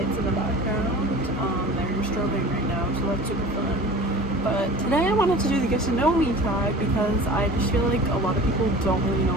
in the background. They're strobing right now, so that's super fun. But today I wanted to do the get to know me tag because I just feel like a lot of people don't really know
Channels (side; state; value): both; normal; correlation 0.39